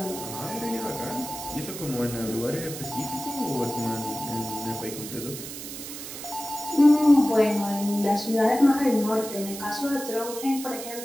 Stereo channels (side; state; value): right; noise; hiss, 10 dB below the sound